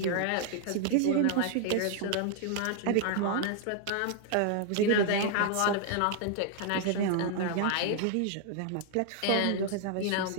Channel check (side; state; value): both; different; correlation 0.00